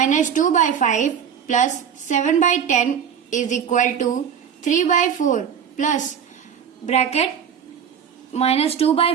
2 by 5 plus 7 by 10 is equal to 3 by 4 plus bracket minus 2 by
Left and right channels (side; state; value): left; quieter; 7.9 dB